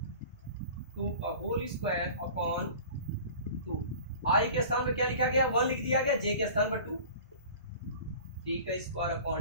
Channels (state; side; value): inverted; both; correlation -0.42